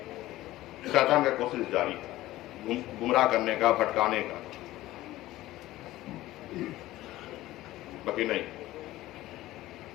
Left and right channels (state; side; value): quieter; right; 16.3 dB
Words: शैतान का कोशिश जारी है गुमराह करने का, भटकाने का। बाकी नहीं,